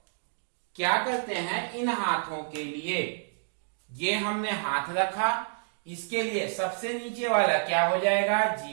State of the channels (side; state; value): left; silent; digital silence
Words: क्या करते हैं, इन हाथों के लिए ये हमने हाथ रखा, इसके लिए सबसे नीचे वाला क्या हो जाएगा?